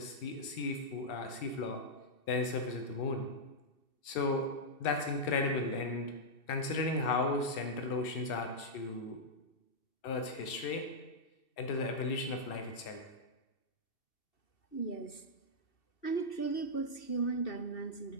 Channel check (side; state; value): right; late; 2.7 ms